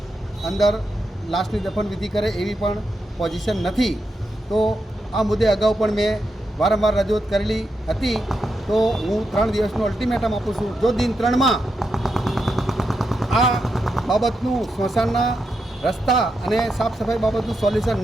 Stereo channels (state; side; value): normal; both; correlation 0.85